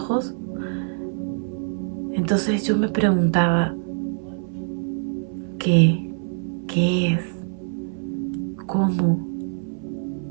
entonces yo me preguntaba, ¿qué? ¿Qué es? ¿Cómo?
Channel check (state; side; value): silent; left; 62 dB below the other